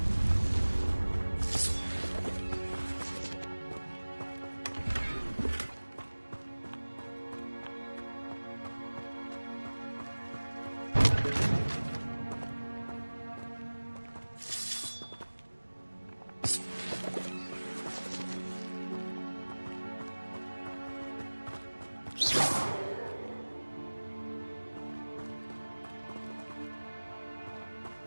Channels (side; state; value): both; inverted; correlation -1.00